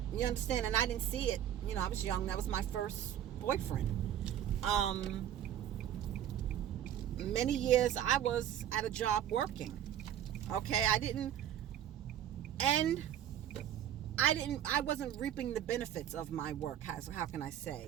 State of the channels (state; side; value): quieter; left; 10.6 dB